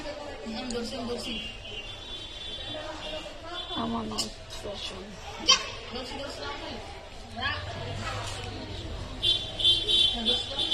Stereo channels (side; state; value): both; identical; correlation 1.00